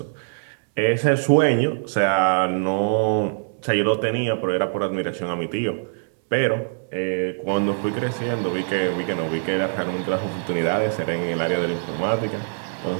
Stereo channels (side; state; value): left; silent; 63 dB below the other